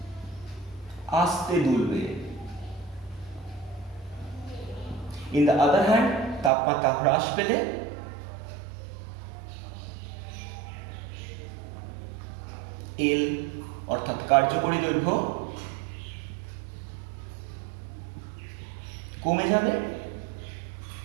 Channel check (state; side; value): drops out; left; at 6.5 s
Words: আস্তে দুলবে। ইন দ্য আদার হ্যান্ড তাপমাত্রা হ্রাস পেলে এল অর্থাৎ কার্যকরী দৈর্ঘ্য কমে যাবে,